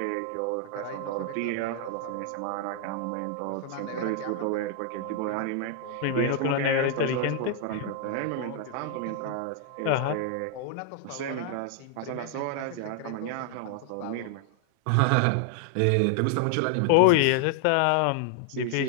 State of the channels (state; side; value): different; both; correlation 0.00